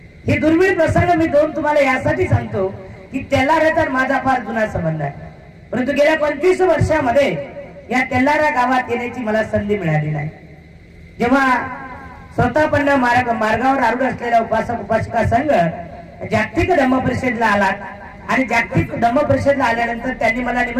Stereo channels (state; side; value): identical; both; correlation 1.00